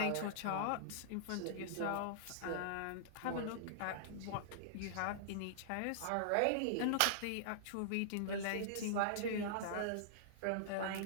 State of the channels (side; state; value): both; different; correlation -0.02